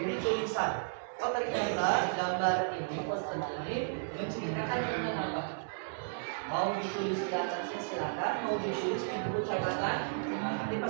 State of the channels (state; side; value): silent; left; digital silence